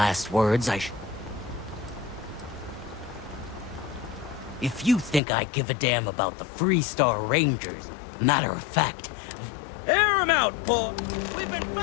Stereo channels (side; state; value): right; drops out; at 5.2 s